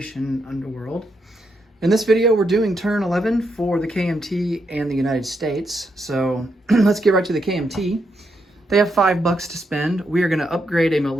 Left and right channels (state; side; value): normal; both; correlation 0.80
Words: Underworld. In this video we're doing turn 11 for the KMT and the United States. So let's get right to the KMT. They have $5 to spend. We are going to upgrade a